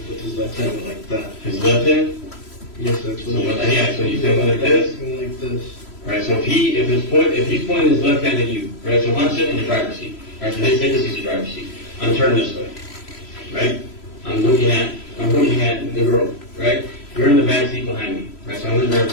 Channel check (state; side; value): late; right; 3.0 ms